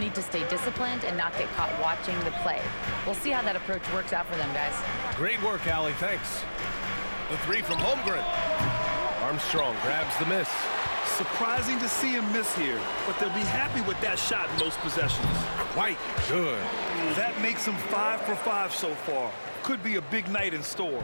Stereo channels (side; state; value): both; inverted; correlation -1.00